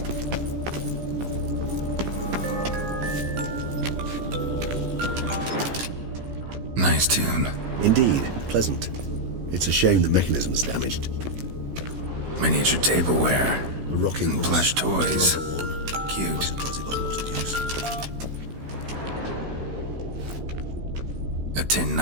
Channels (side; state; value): left; late; 16 ms